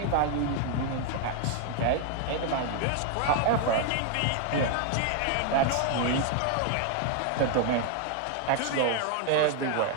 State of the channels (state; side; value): different; both; correlation 0.00